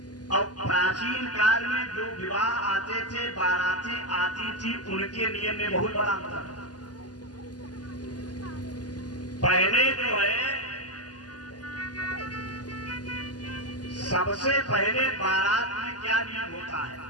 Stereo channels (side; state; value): right; late; 0.69 ms